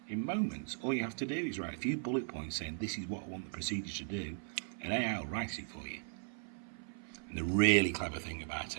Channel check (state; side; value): silent; left; 53 dB below the other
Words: in moments. All you have to do is write a few bullet points saying this is what I want the procedure to do, and AI will write it for you. And the really clever thing about